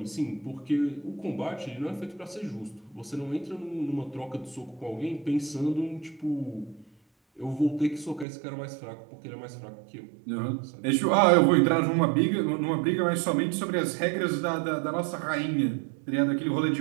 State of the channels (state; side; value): drops out; left; at 8.2 s